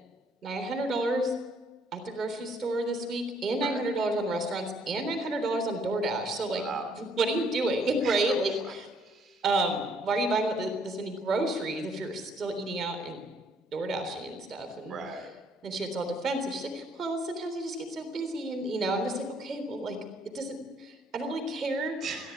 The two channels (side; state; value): both; normal; correlation 0.66